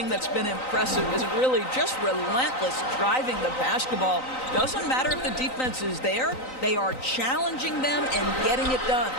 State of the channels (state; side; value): late; right; 3.9 ms